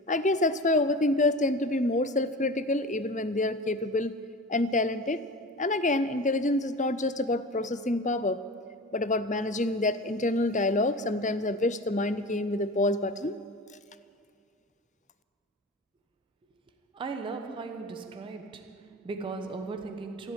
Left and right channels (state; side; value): normal; both; correlation 0.34